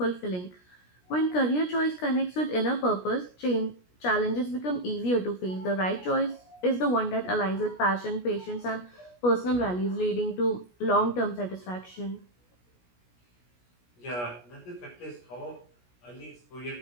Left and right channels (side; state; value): right; late; 17 ms